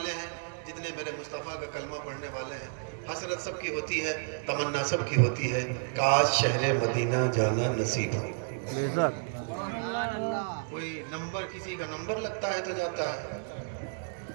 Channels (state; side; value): silent; left; 57 dB below the other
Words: ہیں، جتنے میرے مصطفیٰ کا کلمہ پڑھنے والے ہیں، حسرت سب کی ہوتی ہے، تمنا سب کی ہوتی ہے، کاش شہر مدینہ جانا نصیب ہو۔ بے شک۔ کوئی نمبر، کسی کا نمبر لگتا ہے تو جاتا ہے،